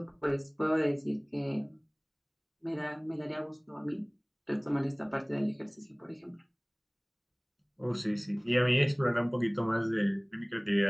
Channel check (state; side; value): identical; both; correlation 1.00